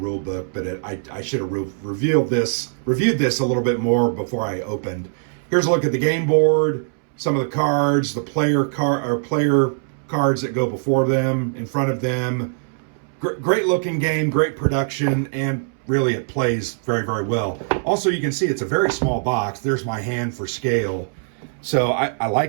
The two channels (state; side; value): silent; left; 64 dB below the other